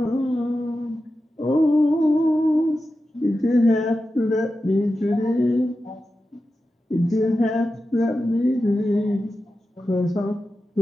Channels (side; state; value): both; normal; correlation 0.92